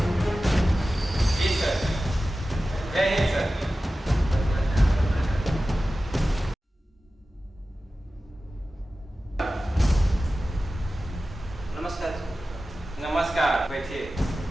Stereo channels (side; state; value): both; normal; correlation 0.95